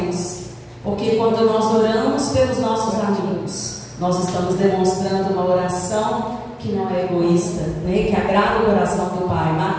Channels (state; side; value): identical; both; correlation 1.00